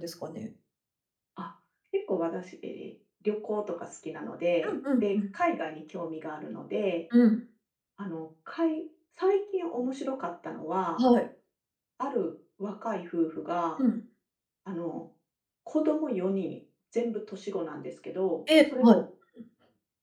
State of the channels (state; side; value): identical; both; correlation 1.00